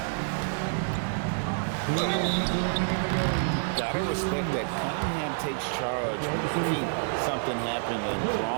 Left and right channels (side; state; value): left; silent; digital silence